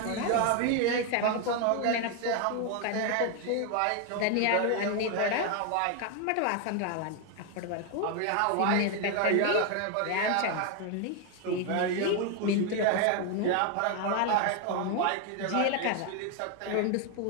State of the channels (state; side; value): different; both; correlation 0.01